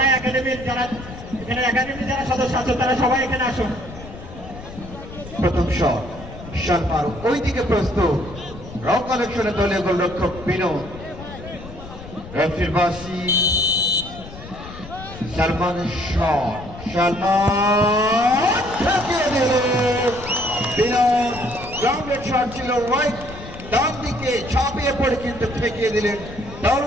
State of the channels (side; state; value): left; noise; rumble, 14 dB below the sound